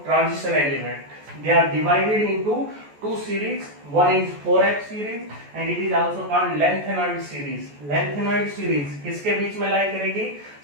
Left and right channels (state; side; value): late; left; 14 ms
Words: transition element. They are divided into two series. One is 4f series and it is also called lengthenoid series. Lengthenoid series किसके बीच में लाई करेगी?